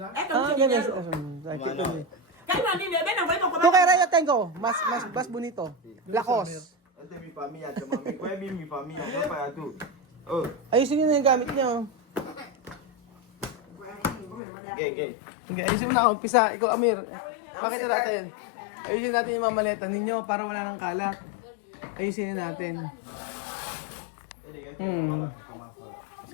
es mucho ganyan. dinero. Cállate, niño, ven, ven, ven, Tu kay Raya tengo. Mas bonito. Lakos. Este es mi familia, mami. Kuya Bill, mi familia. No para tú. Oh, Ayusin nyo na yung gamit nyo. gay. Okay, ayusin mo na. Umpisa. Ikaw, Amir. Pakita natin. Ayusin natin yung mga maleta ninyo para wala nang kalat. Ayusin na natin.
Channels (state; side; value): drops out; right; at 14.4 s